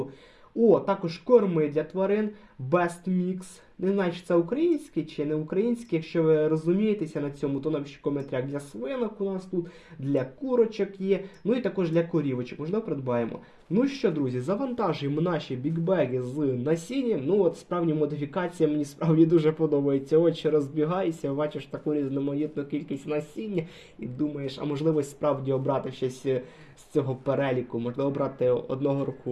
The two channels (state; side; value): identical; both; correlation 1.00